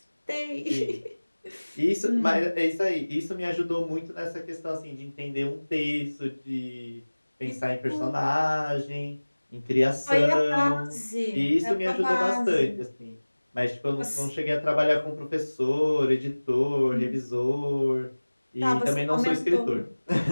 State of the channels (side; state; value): both; inverted; correlation -1.00